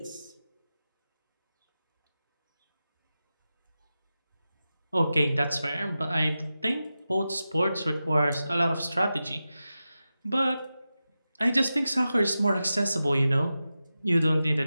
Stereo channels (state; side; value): inverted; both; correlation -0.93